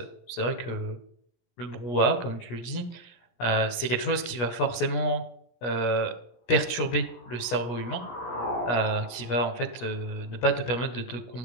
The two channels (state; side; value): late; right; 17 ms